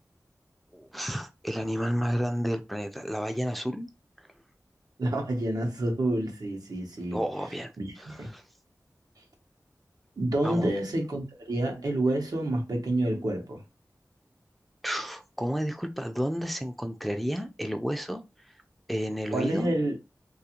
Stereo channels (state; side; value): normal; both; correlation 0.93